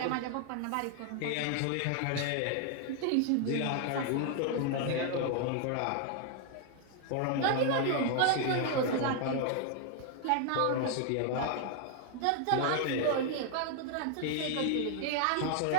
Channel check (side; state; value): both; different; correlation 0.00